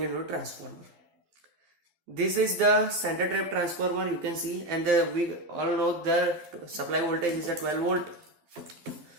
a transformer. This is the center trap transformer, you can see, and we all know the supply voltage is a 12 volt.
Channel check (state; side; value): late; left; 12 ms